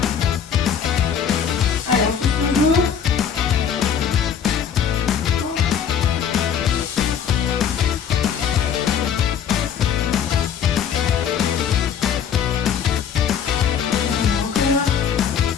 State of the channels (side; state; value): right; quieter; 7.8 dB